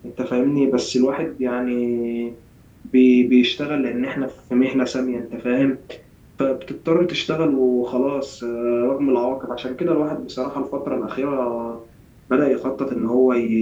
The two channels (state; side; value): identical; both; correlation 1.00